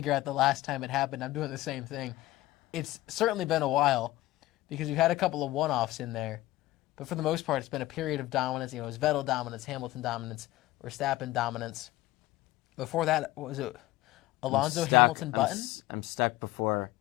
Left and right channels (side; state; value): right; quieter; 17.2 dB